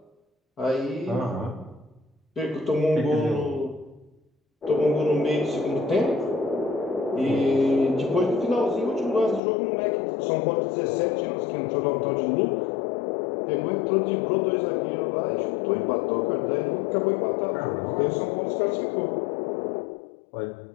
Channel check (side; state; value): right; drops out; at 9.4 s